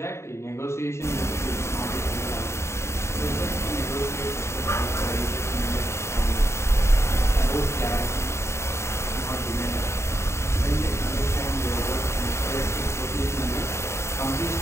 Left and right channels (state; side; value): late; right; 0.13 ms